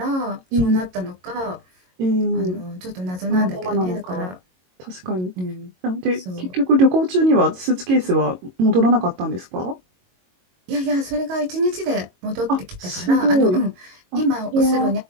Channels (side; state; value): left; late; 22 ms